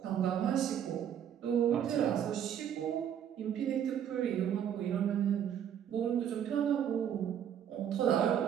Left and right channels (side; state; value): left; quieter; 9.3 dB